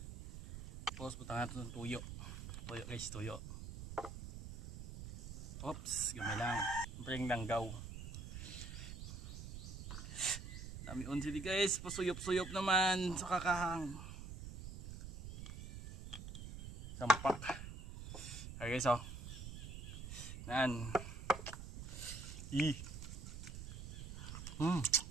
Tapos butang natin ng tuyo. Tuyo guys, tuyo. Oops, gamay lang. Siyempre yung langgaw. Dami unsili guys, pasuyop-suyop naman sa kakahang. Sampak. Okay guys, oh. Nan. I. Mm.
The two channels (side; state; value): right; noise; rumble, 9 dB below the sound